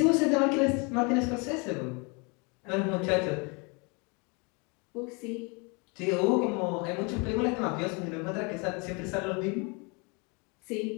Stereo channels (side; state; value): right; quieter; 31.4 dB